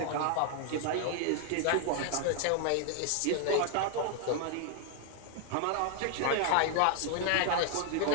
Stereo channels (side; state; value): both; different; correlation 0.00